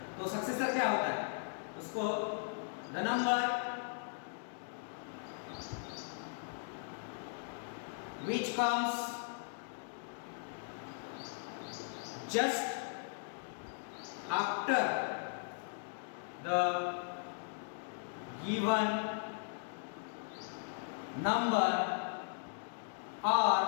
तो सक्सेसर क्या होता है, उसको the number which comes just after the given number or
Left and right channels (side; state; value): right; silent; digital silence